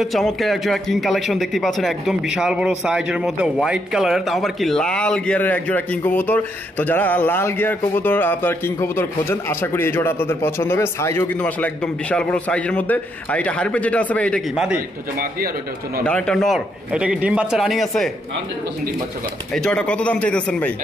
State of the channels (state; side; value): normal; both; correlation 0.76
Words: চমৎকার এক জোড়া কিং কালেকশন দেখতে পাচ্ছেন, একদম বিশাল বড় সাইজের মধ্যে হোয়াইট কালারের, তাও আবার কি লাল গিয়ারের এক জোড়া কিং কবুতর। তো যারা লাল গিয়ার কবুতর আপনার কিং কবুতর খোঁজেন, আশা করি এই জোড়া আপনাদের পছন্দ হবে। সাইজও কিন্তু আসলে একদম বিশাল বড় সাইজের মধ্যে। আর এটা হারপে যেটা আছে ভাই, এটা কি মাদি? এটা নর। এটা কি ডিম বাচ্চা রানিং আছে? 100% ডিম বাচ্চা করা। এই জোড়াটা কত দাম চাইতেছেন ভাই?